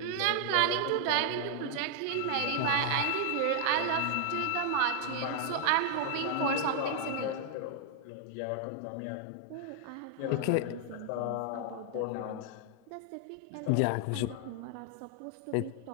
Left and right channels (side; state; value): both; different; correlation 0.00